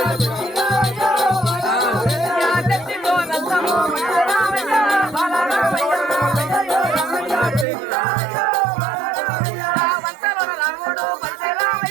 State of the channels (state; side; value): drops out; left; at 7.7 s